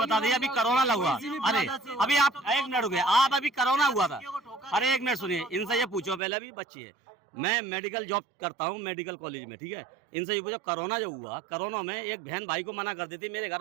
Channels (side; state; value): left; drops out; at 6.2 s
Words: दीजिए, अभी कोरोना लगा, अरे अभी आप एक मिनट हो गया, आप अभी कोरोना हुआ था, अरे एक मिनट सुनिए, इनसे ये पूछो, पहले अभी बच्ची है, मैं मेडिकल जॉब करता हूँ मेडिकल कॉलेज में, ठीक है। इनसे ये पूछो, कोरोना जो हुआ, कोरोना में एक बहन भाई को मना कर दी थी, मेरे